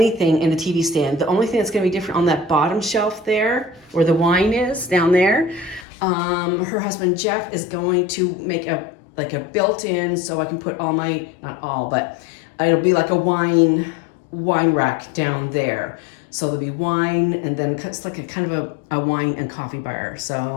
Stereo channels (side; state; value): right; drops out; at 5.9 s